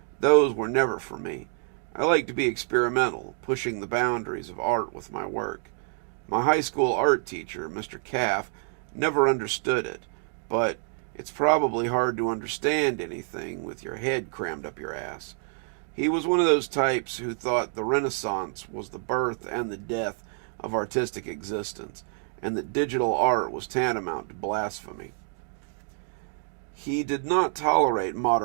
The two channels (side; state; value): left; silent; 60 dB below the other